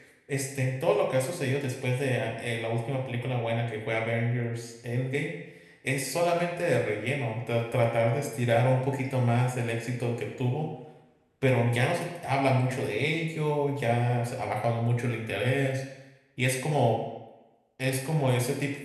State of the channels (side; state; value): both; identical; correlation 1.00